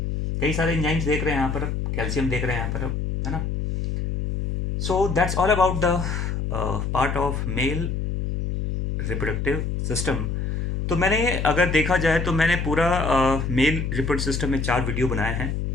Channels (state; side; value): noise; left; hum, 2 dB below the sound